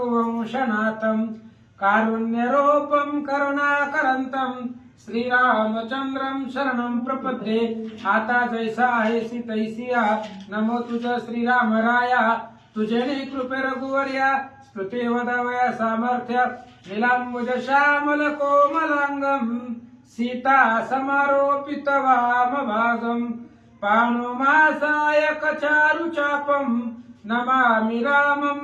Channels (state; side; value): identical; both; correlation 1.00